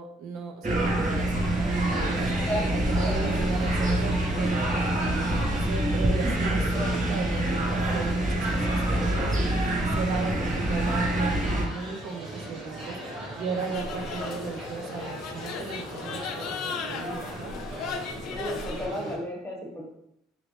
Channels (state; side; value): normal; both; correlation 0.71